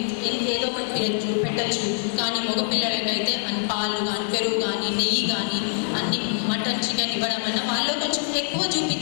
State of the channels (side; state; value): right; silent; digital silence